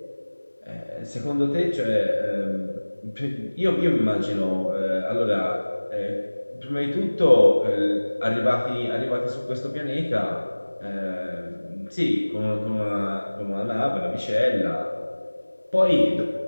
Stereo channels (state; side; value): inverted; both; correlation -1.00